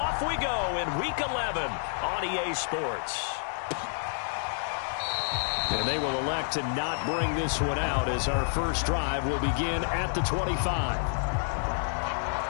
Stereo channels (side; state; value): right; silent; digital silence